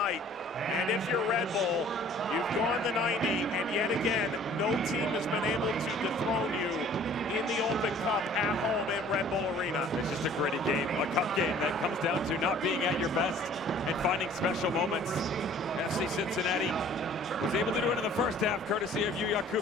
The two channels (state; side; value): normal; both; correlation 0.52